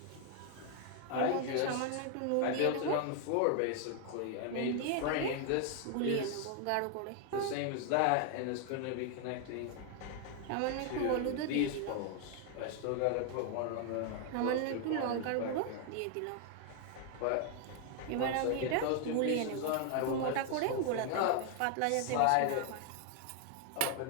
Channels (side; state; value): both; different; correlation 0.00